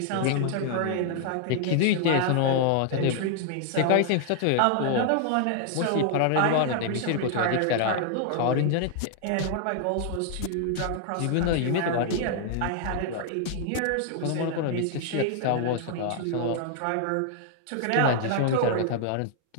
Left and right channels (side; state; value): both; different; correlation 0.00